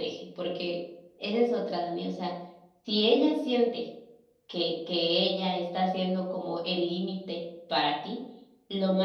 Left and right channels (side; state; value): both; identical; correlation 1.00